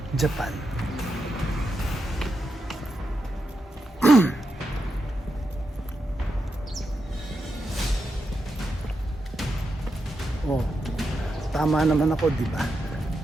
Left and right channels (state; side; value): normal; both; correlation 0.86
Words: Japan. tama naman ako, di ba?